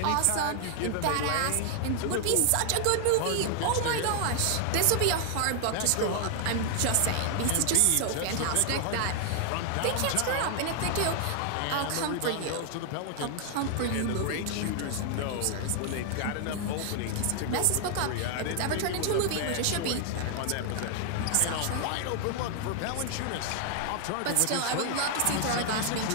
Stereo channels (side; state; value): both; different; correlation 0.00